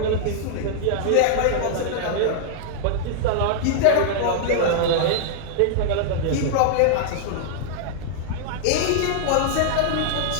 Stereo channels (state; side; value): different; both; correlation -0.01